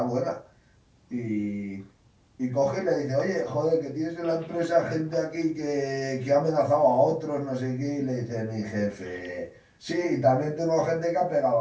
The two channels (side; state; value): both; identical; correlation 1.00